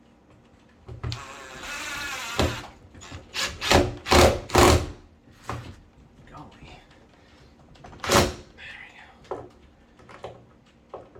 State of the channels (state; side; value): identical; both; correlation 1.00